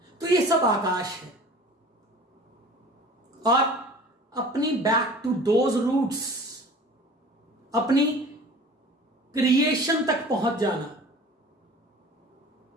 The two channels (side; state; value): both; normal; correlation 0.43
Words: तो ये सब आकाश है। और अपनी बैक टू दोज रूट्स, अपनी क्रिएशन तक पहुंच जाना।